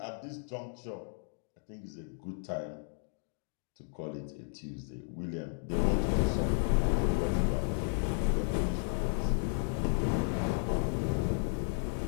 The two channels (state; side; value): silent; right; 55 dB below the other